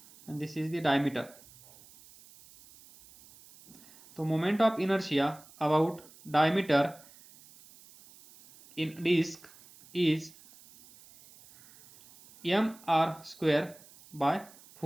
and this is the diameter. तो moment of inertia about diameter in disk is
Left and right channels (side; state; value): right; noise; hiss, 24 dB below the sound